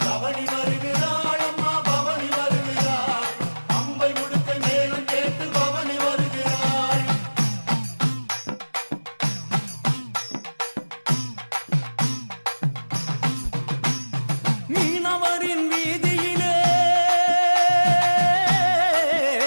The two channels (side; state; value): both; inverted; correlation -1.00